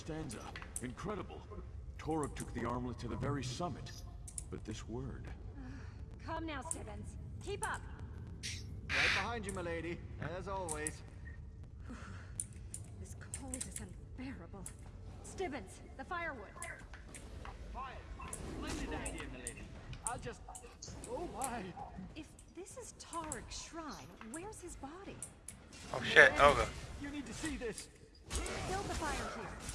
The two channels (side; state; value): both; identical; correlation 1.00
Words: Incredible. Toruk took the armlet to the very summit. But this word... Come now, Stibbins. Keep up. Right behind you, milady, as always. This cold is unbearable. Stibbins, the firewood. Fire. Splendid idea, milady. I'll just... Oh, my. If this is Tarek's shrine, where's his body? Oh shit, Olga. You need to see this. Build the fire here.